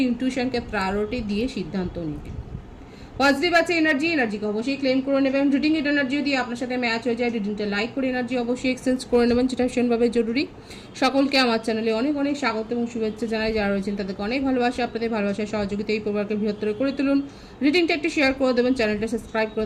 ইনটিউশনকে প্রায়োরিটি দিয়ে সিদ্ধান্ত নেবেন। পজিটিভ আছে এনার্জিকে অবশ্যই ক্লেম করে নেবেন। রিডিং এর এনার্জি যদি আপনার সাথে ম্যাচ হয়ে যায়, রিডিংটা লাইক করে এনার্জি অবশ্যই এক্সচেঞ্জ করে নেবেন, যেটা ভীষণভাবে জরুরি। সকলকে আমার চ্যানেলে অনেক অনেক স্বাগত এবং শুভেচ্ছা জানাই। যারা রয়েছেন তাদেরকে অনেক ভালোবাসা, আপনাদের ভালোবাসার সহযোগিতা এই পরিবারকে বৃহত্তর করে তুলুন। রিডিংটা একটু শেয়ার করে দেবেন, চ্যানেলটা সাবস্ক্রাইব করে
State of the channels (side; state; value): both; identical; correlation 1.00